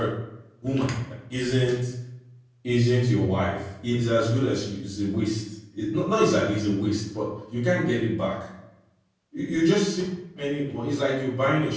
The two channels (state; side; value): identical; both; correlation 1.00